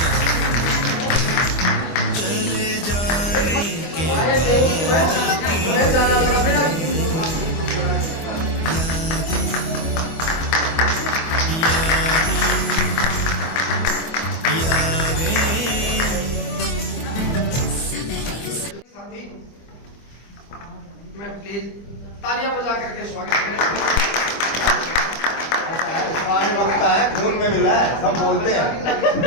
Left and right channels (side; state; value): right; late; 25 ms